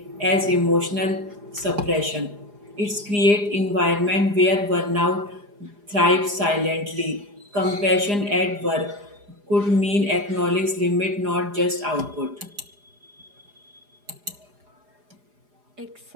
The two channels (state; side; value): late; left; 4.9 ms